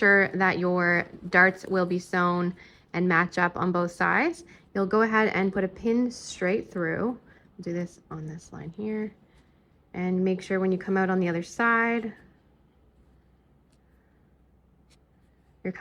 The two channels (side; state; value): both; identical; correlation 1.00